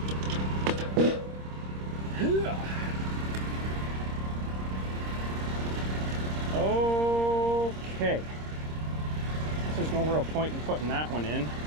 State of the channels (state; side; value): late; left; 26 ms